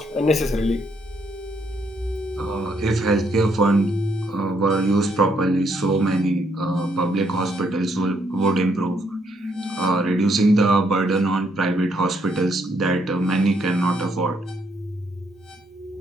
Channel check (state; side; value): normal; both; correlation 0.73